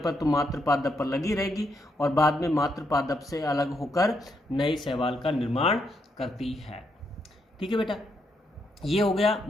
तो मात्र पादप पर लगी रहेगी और बाद में मात्र पादप से अलग होकर नए शैवाल का निर्माण करती है। ठीक है बेटा, ये हो गया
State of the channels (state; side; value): normal; both; correlation 0.78